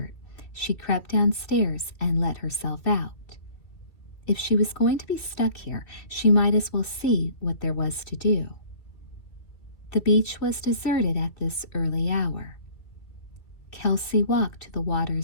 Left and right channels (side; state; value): right; late; 2.6 ms